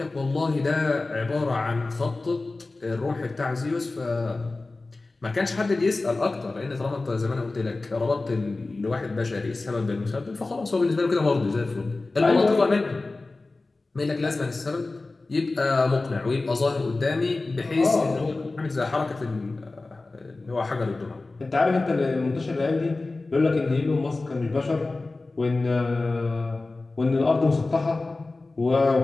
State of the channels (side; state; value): right; quieter; 3.3 dB